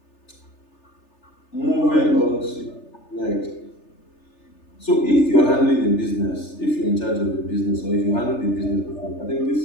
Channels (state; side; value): late; right; 3.3 ms